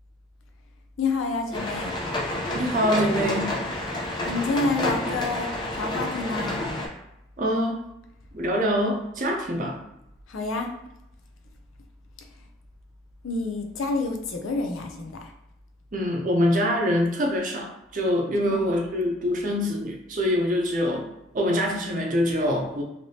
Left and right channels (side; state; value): both; normal; correlation 0.50